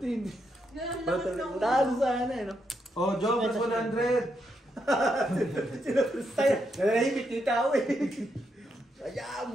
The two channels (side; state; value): both; normal; correlation 0.80